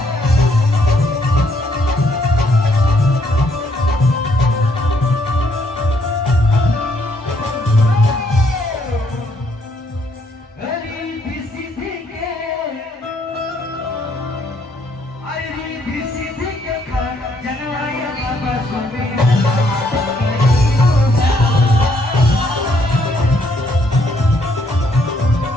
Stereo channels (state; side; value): normal; both; correlation 0.70